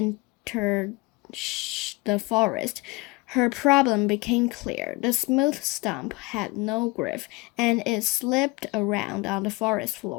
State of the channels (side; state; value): right; quieter; 23.8 dB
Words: the forest, her problem became clear. The smooth stump had no grip, and it slipped around on the forest